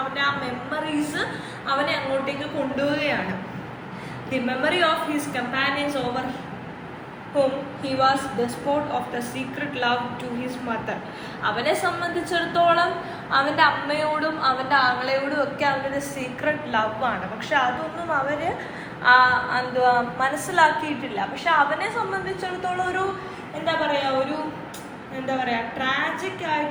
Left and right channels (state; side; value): identical; both; correlation 1.00